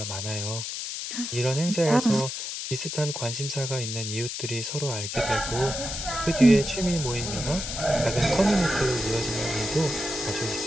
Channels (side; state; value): left; noise; hiss, 5 dB below the sound